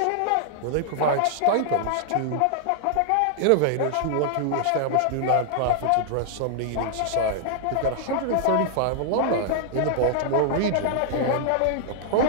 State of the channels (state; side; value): different; both; correlation -0.01